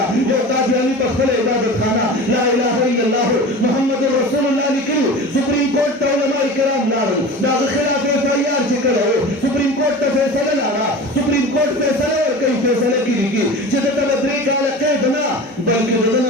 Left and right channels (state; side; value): normal; both; correlation 0.34